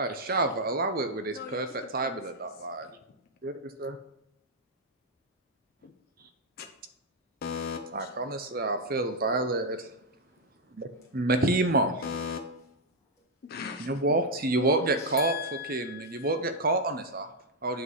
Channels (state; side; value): normal; both; correlation -0.01